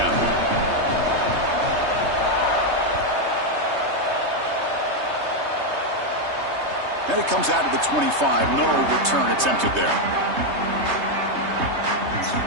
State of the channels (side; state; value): left; late; 3.2 ms